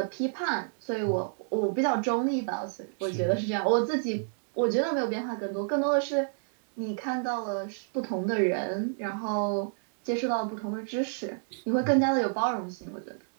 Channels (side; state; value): left; silent; digital silence